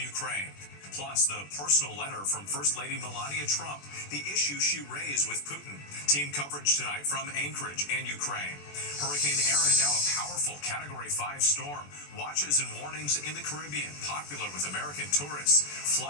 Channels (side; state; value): right; late; 21 ms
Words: Plus, the personal letter from First Lady Melania Trump, the issue she raised with Putin. Team coverage tonight from Anchorage and Ukraine. Hurricane Erin, now a powerful Category 5 storm. Watches and warnings in the Caribbean, popular with American tourists.